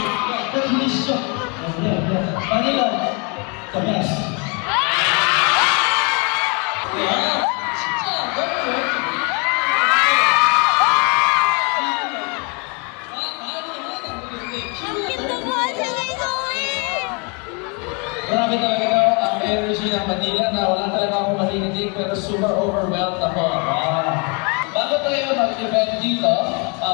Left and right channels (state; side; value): quieter; right; 33.1 dB